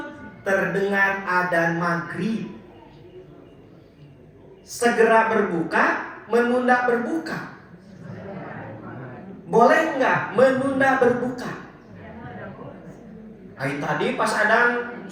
Terdengar adzan maghrib. Segera berbuka, menunda berbuka. Boleh nggak menunda berbuka? Tadi pas adzan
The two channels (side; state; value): both; identical; correlation 1.00